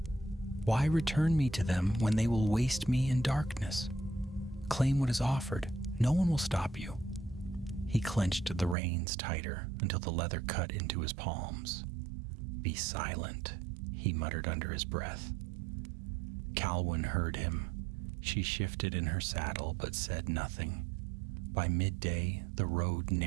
Why return me to them when they will waste me in darkness? Claim what is offered. No one will stop you." He clenched the reins tighter until the leather cut into his palms. "Be silent," he muttered under his breath. Calwyn heard him. She shifted in her saddle but said nothing. By midday, the road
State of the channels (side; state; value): left; drops out; at 8.8 s